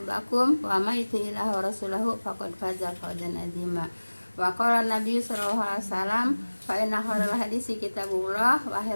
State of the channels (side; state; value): both; inverted; correlation -1.00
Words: wa may yuti'illaha wa rasulahu faqad faza fawzan 'azima. Wa qala Nabi sallallahu alaihi wasallam fa inna khairal hadisi kitabullah wa